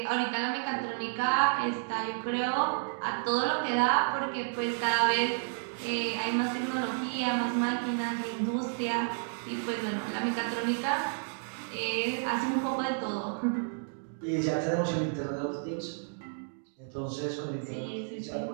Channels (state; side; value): silent; left; digital silence